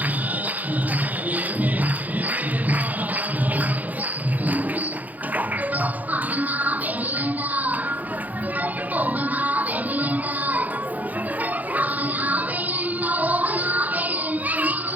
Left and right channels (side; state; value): left; late; 0.080 ms